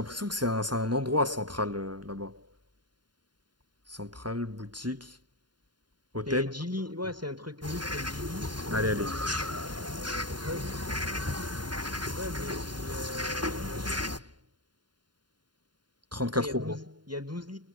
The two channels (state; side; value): late; left; 0.71 ms